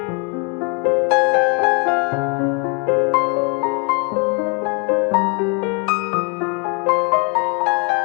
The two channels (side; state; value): right; quieter; 34.8 dB